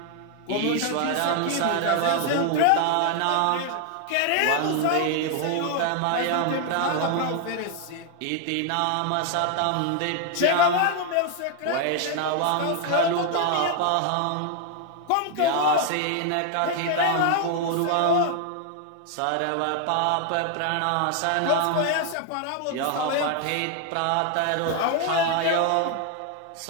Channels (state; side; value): different; both; correlation 0.00